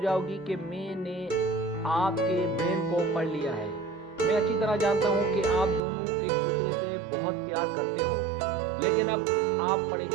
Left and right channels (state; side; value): drops out; left; at 5.8 s